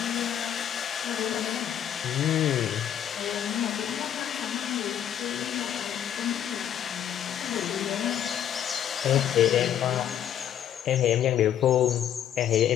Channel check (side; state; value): right; quieter; 10.0 dB